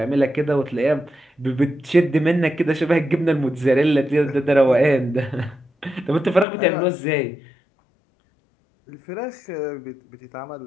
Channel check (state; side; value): drops out; right; at 6.5 s